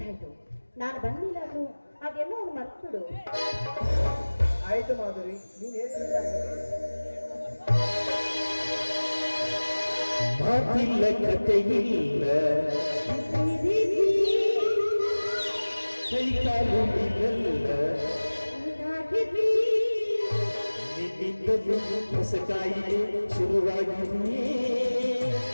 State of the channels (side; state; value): both; inverted; correlation -1.00